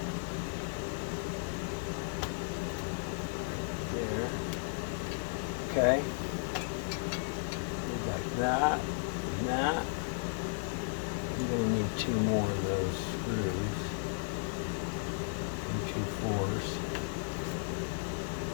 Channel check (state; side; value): silent; right; digital silence